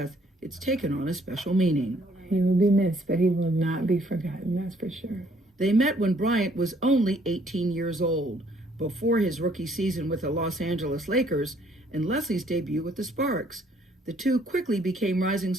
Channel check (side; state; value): both; normal; correlation 0.64